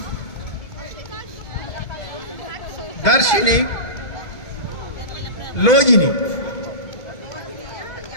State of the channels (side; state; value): right; late; 2.0 ms